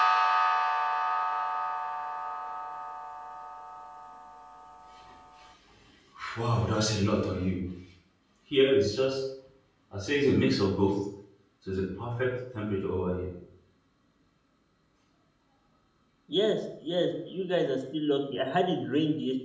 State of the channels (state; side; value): identical; both; correlation 1.00